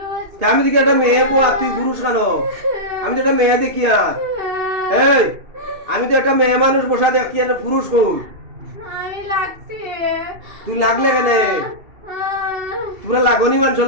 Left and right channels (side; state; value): left; late; 2.7 ms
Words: আমি দেখি একটা মেয়ে বুয়া তুই পুরুষ কেন আমি তো একটা মেয়ে দেখি আর এই আমি তো একটা মেয়ে মানুষ বসা দেখি আর পুরুষ কই আমি লাগছি তুই লাগলে কেন তোরা লাগনি মানুষের